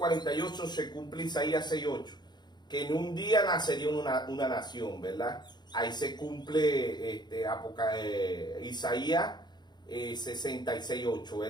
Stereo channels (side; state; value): right; late; 0.21 ms